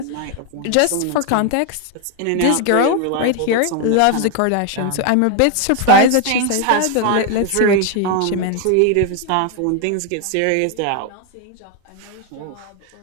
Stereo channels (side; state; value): both; different; correlation 0.01